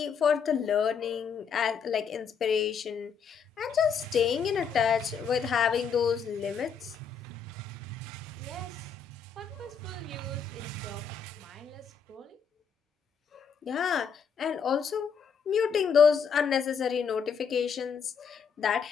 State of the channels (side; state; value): right; quieter; 6.4 dB